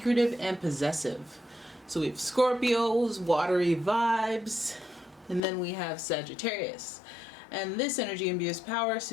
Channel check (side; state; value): right; drops out; at 5.4 s